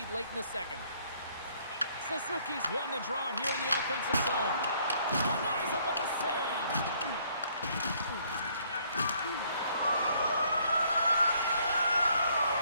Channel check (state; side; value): inverted; both; correlation -0.65